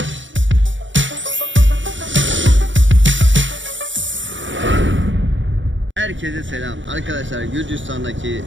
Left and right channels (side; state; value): left; late; 0.55 ms